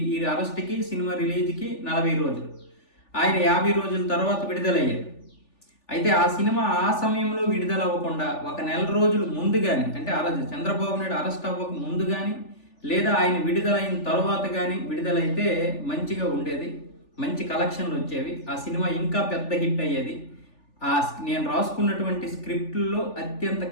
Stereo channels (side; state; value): right; late; 3.4 ms